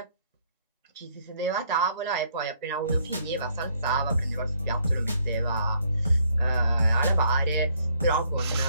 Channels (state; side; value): inverted; both; correlation -0.67